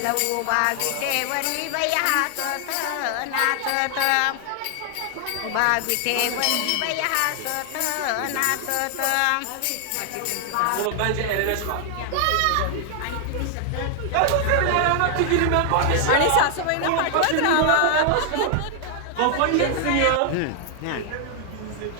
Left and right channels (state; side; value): different; both; correlation 0.00